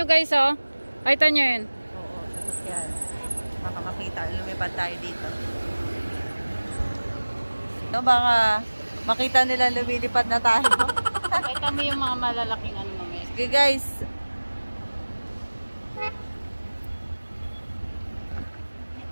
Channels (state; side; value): inverted; both; correlation -1.00